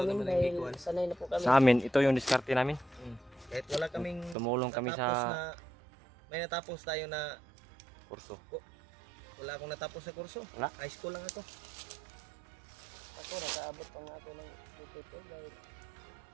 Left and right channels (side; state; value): left; drops out; at 4.4 s